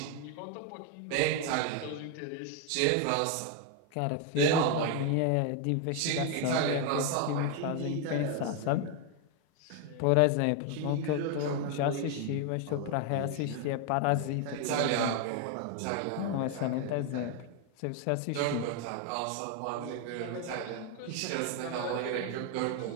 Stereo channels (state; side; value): different; both; correlation 0.01